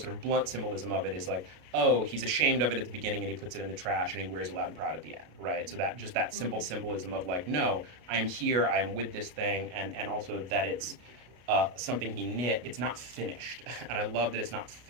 sort of blunt symbolism of it is like, oh, he's ashamed of it at the beginning and he puts it in the trash and he wears it loud and proud at the end, right? So that just that simple symbolism of like, no, I am here, I am with this thing, and also that it's something he knit. It's not finished, and I love that it's not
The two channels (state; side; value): late; left; 33 ms